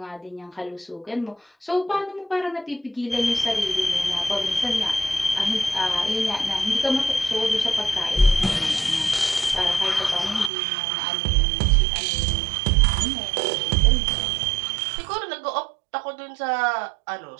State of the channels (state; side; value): drops out; left; at 10.5 s